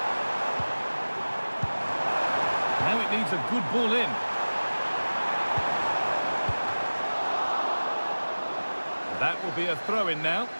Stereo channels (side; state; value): both; inverted; correlation -1.00